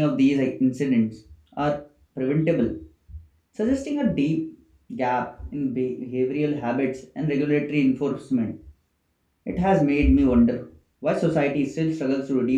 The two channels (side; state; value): both; identical; correlation 1.00